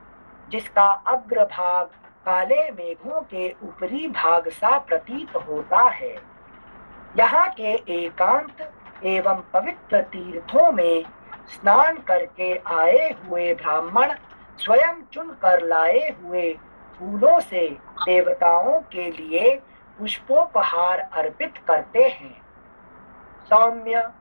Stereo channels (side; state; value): both; inverted; correlation -1.00